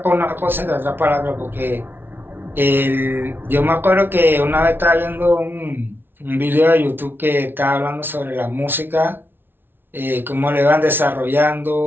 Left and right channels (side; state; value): left; late; 0.10 ms